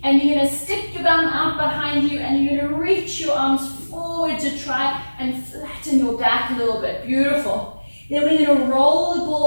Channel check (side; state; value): both; inverted; correlation -1.00